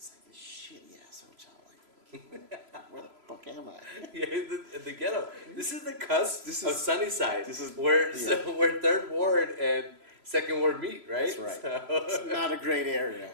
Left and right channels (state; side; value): late; left; 3.0 ms